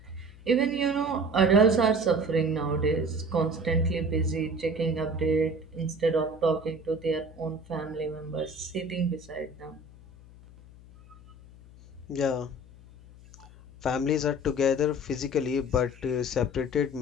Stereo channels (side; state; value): left; noise; hum, 21 dB below the sound